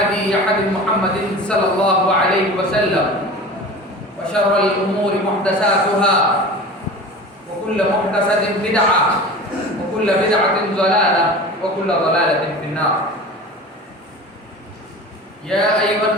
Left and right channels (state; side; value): normal; both; correlation 0.35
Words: هدي محمد صلى الله عليه وسلم وشر الأمور محدثاتها وكل محدثة بدعة وكل بدعة ضلالة وكل ضلالة في النار. يا أيها